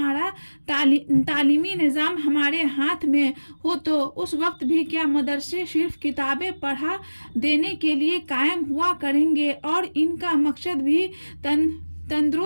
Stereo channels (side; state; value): both; inverted; correlation -1.00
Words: तालीमी निज़ाम हमारे हाथ में हो, तो उस वक्त भी क्या मदरसे सिर्फ किताबें पढ़ा देने के लिए कायम हुआ करेंगे, और इनका मकसद भी